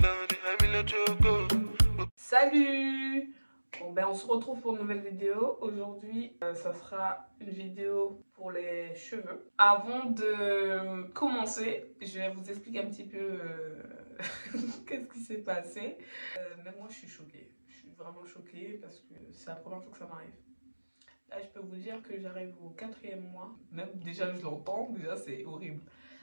Salut! Bon ben on se retrouve pour une nouvelle vidéo. Aujourd'hui, ça sera une vidéo pour les cheveux. Avant de commencer, je vais vous expliquer un petit peu qu'est-ce qui s'est passé. Même moi je suis choquée. Je suis vraiment choquée parce que c'est la première fois que ça m'arrive. Là je peux vous dire que j'arrive au 4e mois. Même déjà je l'entends, déjà c'est horrible.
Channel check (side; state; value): both; inverted; correlation -1.00